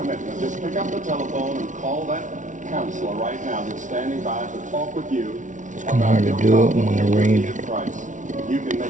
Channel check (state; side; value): late; left; 0.37 ms